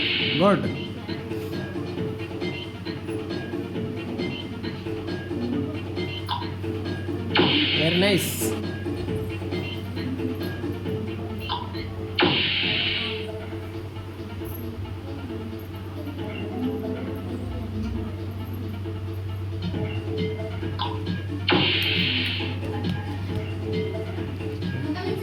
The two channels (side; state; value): both; identical; correlation 1.00